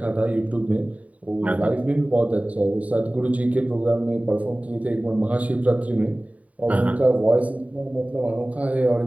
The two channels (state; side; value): late; left; 0.069 ms